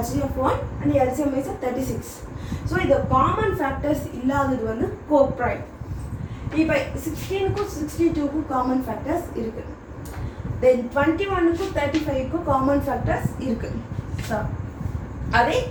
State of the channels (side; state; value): both; identical; correlation 1.00